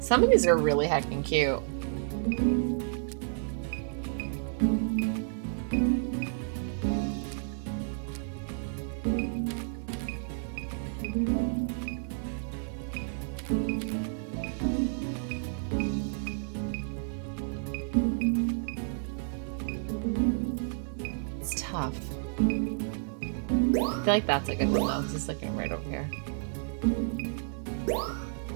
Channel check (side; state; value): left; silent; 57 dB below the other